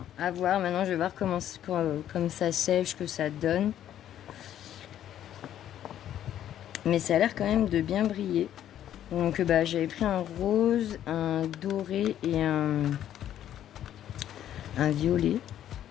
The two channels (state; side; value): quieter; right; 11.1 dB